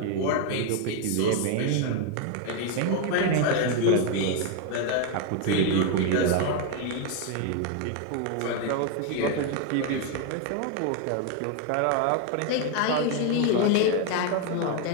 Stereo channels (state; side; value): different; both; correlation 0.01